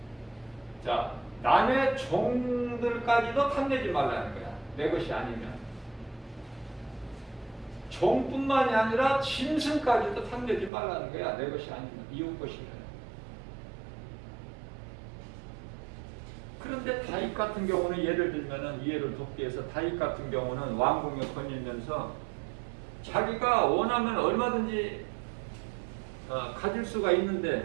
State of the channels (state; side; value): drops out; left; at 10.7 s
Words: 자, 남의 종들까지도 탐내지 말라는 거야. 내 것이 아니면. 종뿐만이 아니라 짐승까지도 탐내지 말라는 거야. 내 것이 아니면. 이웃 것이면. 그런데 다윗 같은 경우는 예를 들면은 이해를 돕기 위해서 다윗 같은 경우는 왕궁에 거닐면서 자기가 원하면 얼마든지 가질 수가